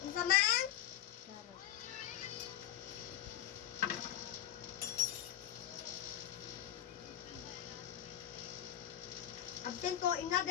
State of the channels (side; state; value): right; quieter; 12.0 dB